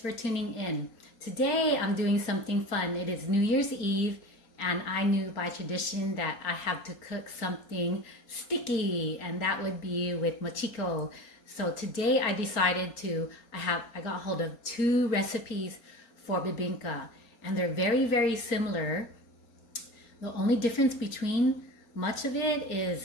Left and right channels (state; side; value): late; right; 4.4 ms